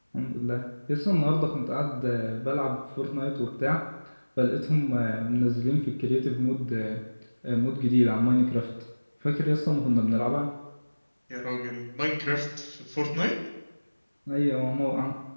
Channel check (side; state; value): both; inverted; correlation -1.00